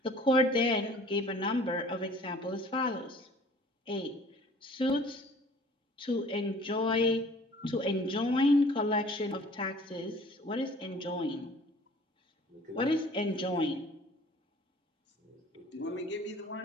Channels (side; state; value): both; normal; correlation 0.51